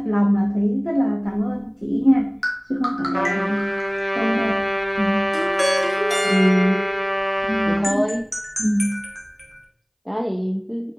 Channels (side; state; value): both; identical; correlation 1.00